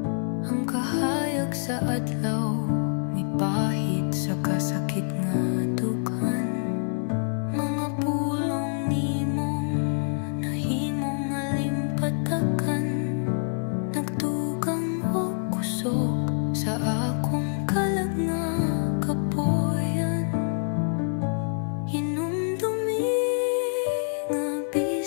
ang kahayag sa adlaw may pahit sa kasakit nga dukan. Mga pulong nimong nahimong alimpatakan, nagtugang o kusog sa akong kalag nga kapuyan. Hinumdumi nga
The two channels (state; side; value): silent; right; digital silence